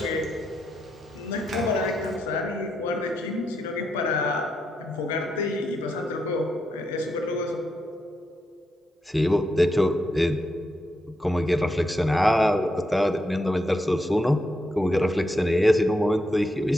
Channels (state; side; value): normal; both; correlation 0.83